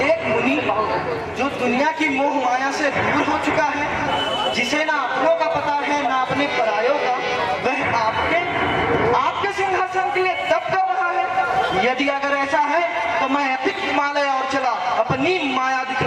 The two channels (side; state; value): both; identical; correlation 1.00